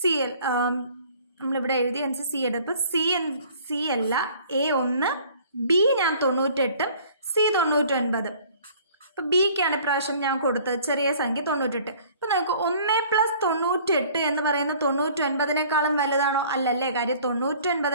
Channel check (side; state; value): both; inverted; correlation -0.53